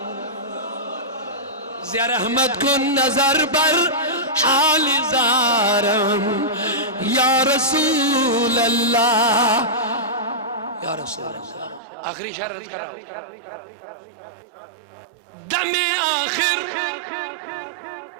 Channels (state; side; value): drops out; left; at 11.8 s